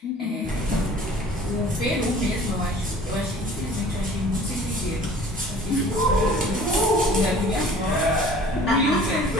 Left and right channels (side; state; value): both; normal; correlation 0.48